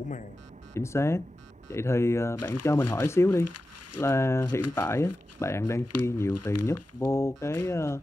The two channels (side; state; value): both; normal; correlation 0.93